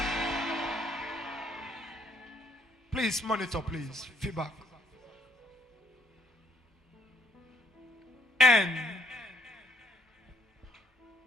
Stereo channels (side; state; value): both; normal; correlation 0.65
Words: Please monitor, please. Feedback. And